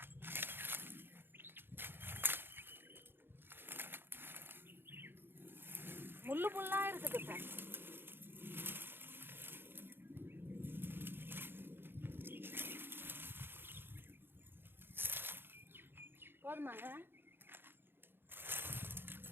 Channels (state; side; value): late; left; 0.10 ms